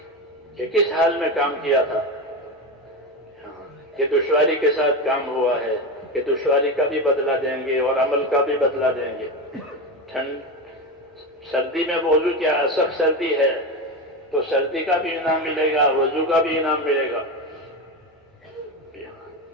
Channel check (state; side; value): normal; both; correlation 0.19